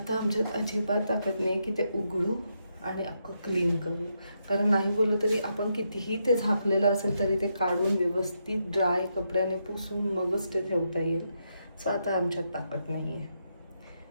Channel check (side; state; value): both; inverted; correlation -0.81